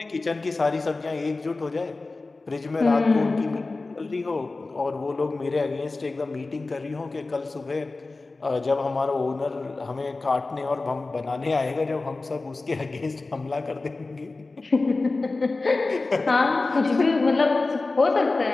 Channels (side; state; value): right; quieter; 3.5 dB